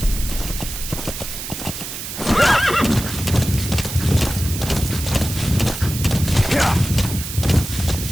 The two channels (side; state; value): right; noise; hiss, 8 dB below the sound